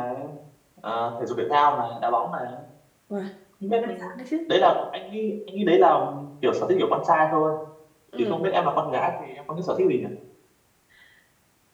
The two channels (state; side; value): identical; both; correlation 1.00